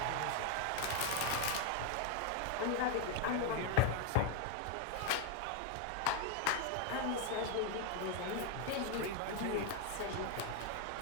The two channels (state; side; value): different; both; correlation 0.01